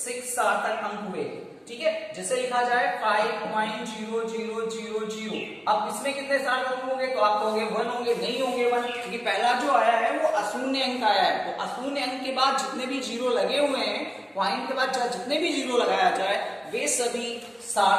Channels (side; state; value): both; identical; correlation 1.00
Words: सार्थक अंक हुए। ठीक है, जैसे लिखा जाए 5.0000। अब इसमें कितने सार्थक अंक होंगे, तो आप कहोगे 1 होंगे, नहीं होंगे 1, क्योंकि पहला जो आया है वो अशून्य अंक आया है। तो अशून्य अंक के बाद जितने भी जीरो लगे हुए हैं, पॉइंट के बाद जितने भी जीरो लगाया जाए वे सभी